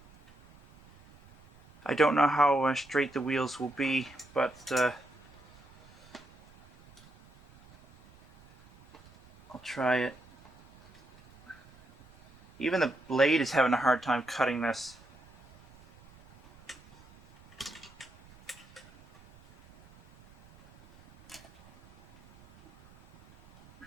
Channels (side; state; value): right; noise; rumble, 25 dB below the sound